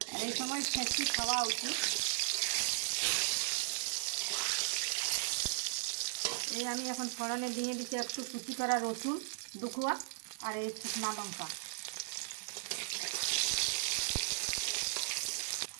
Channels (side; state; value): left; silent; digital silence